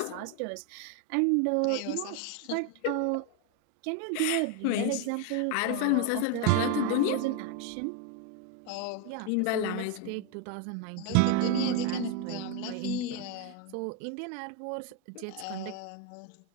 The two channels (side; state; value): both; different; correlation 0.01